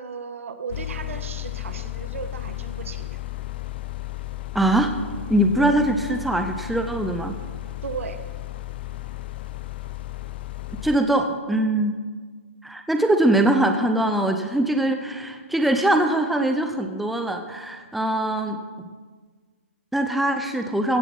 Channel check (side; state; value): both; normal; correlation 0.49